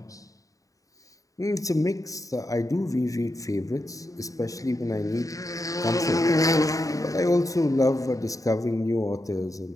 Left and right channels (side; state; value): right; late; 0.16 ms